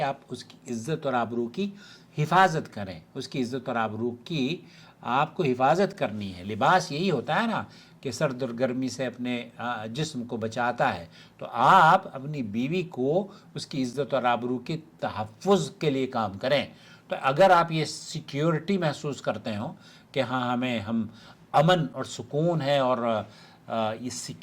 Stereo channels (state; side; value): identical; both; correlation 1.00